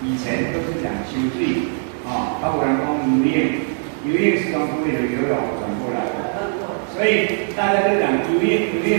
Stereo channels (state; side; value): silent; left; 59 dB below the other